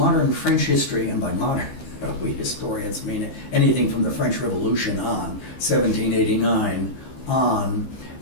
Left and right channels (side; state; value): right; late; 15 ms